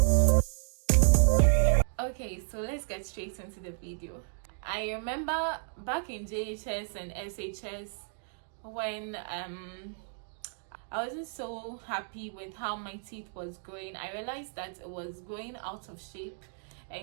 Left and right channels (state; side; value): silent; left; digital silence